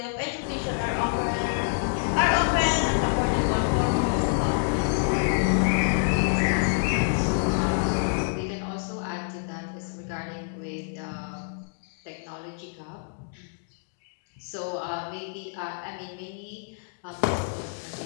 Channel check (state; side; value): silent; right; digital silence